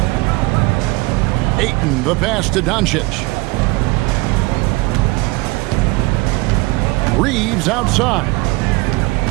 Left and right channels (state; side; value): quieter; left; 23.2 dB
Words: Ayton, the pass to Doncic. Reeves outside.